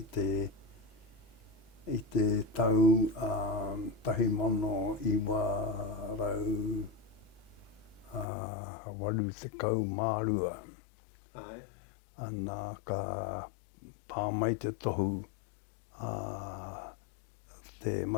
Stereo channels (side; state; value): right; drops out; at 8.2 s